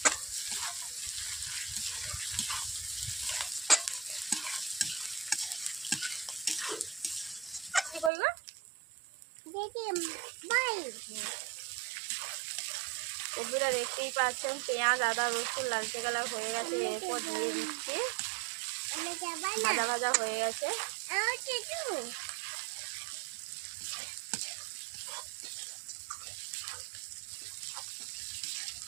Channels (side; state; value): left; drops out; at 8.1 s